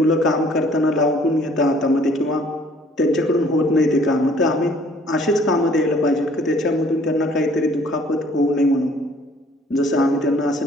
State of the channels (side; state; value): both; normal; correlation 0.58